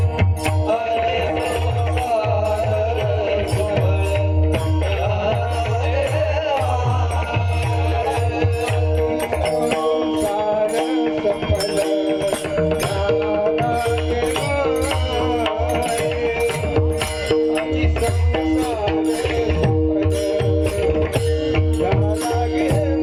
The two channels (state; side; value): identical; both; correlation 1.00